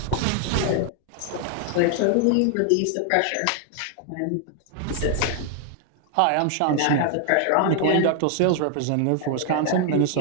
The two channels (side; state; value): both; different; correlation 0.00